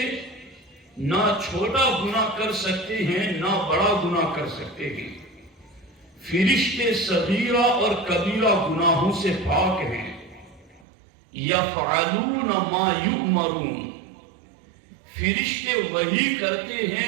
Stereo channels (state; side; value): drops out; left; at 10.9 s